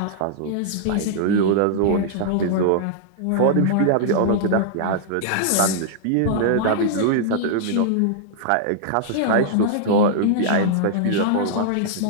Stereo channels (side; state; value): both; different; correlation -0.01